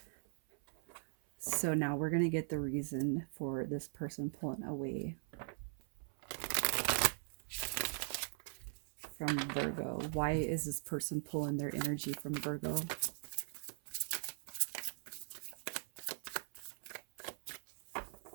So now we're going to get the reason for this person pulling away from Virgo. Why is this person pulling their energy from Virgo?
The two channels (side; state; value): left; silent; 51 dB below the other